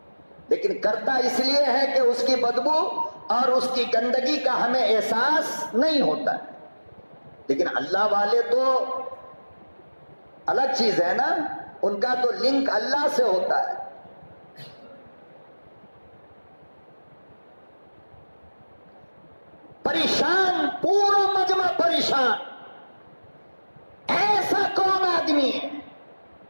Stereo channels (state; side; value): inverted; both; correlation -1.00